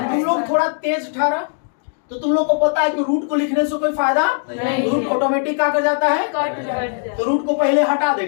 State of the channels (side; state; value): right; silent; digital silence